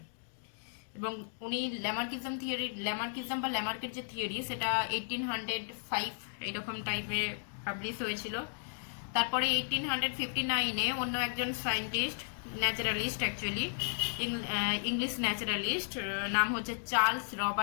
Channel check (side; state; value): right; silent; digital silence